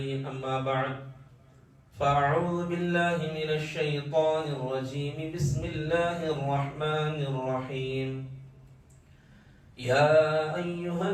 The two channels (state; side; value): identical; both; correlation 1.00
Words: അമ്മാ ബഅദ്. فأعوذ بالله من الشيطان الرجيم. بسم الله الرحمن الرحيم. يا أيها